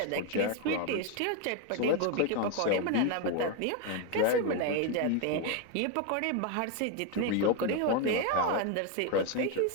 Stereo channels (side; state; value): both; different; correlation 0.01